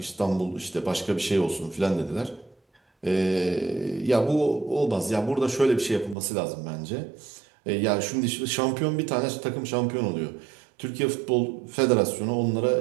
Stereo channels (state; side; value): drops out; left; at 6.2 s